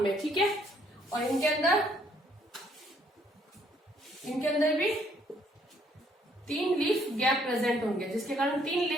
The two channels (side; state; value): both; normal; correlation 0.66